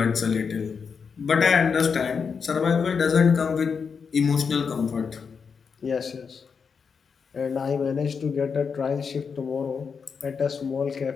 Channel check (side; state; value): right; quieter; 5.9 dB